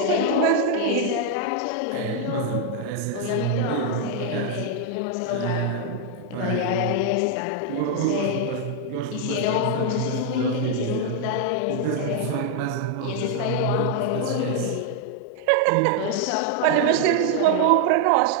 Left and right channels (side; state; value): both; different; correlation 0.00